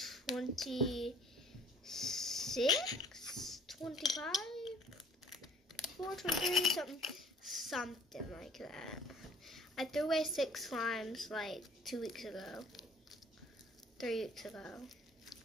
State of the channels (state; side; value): normal; both; correlation 0.54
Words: 26, 25, 4, 23, something like that. I threw away 6 slimes like 2 weeks ago, 3 weeks ago.